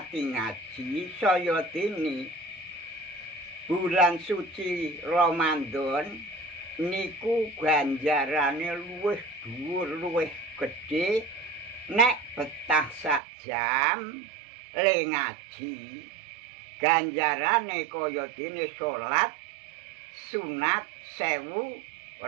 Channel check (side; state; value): left; drops out; at 13.2 s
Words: ngaji saya dene bulan suci Ramadan niku ganjarane luwih dhuwur luwih gedhe nek betah sak jam le ngaji ganjarane kaya dene salat sunat 1000